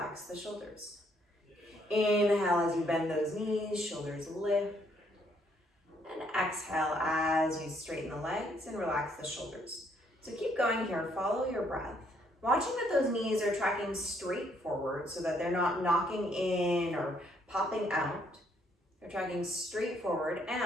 the shoulders. Inhale as you bend those knees, shoulders lift. And exhale as you straighten the legs and relax the shoulders. So keep going here, follow your breath. Watching that those knees are tracking straight forward so that they're not knocking in or popping out. They're tracking straight forward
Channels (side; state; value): both; normal; correlation 0.69